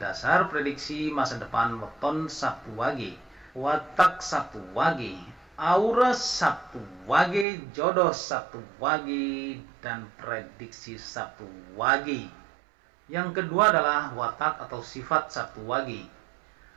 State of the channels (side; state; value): left; drops out; at 7.5 s